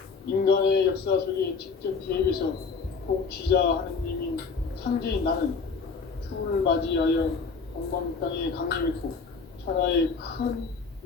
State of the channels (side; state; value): right; quieter; 5.0 dB